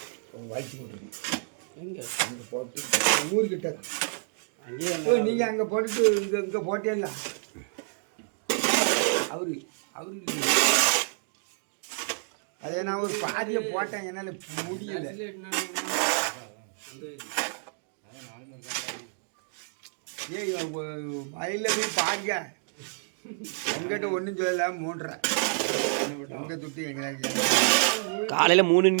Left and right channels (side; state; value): left; silent; digital silence